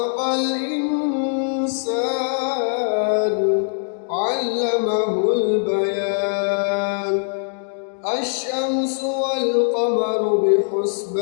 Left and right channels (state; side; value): silent; right; 63 dB below the other